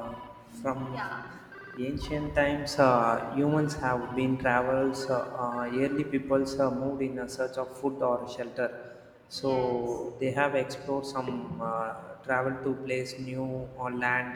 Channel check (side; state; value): both; identical; correlation 1.00